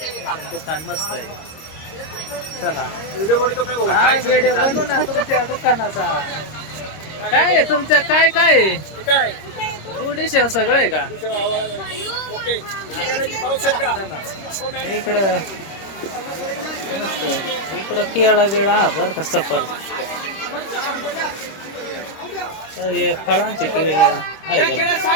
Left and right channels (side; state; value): right; late; 26 ms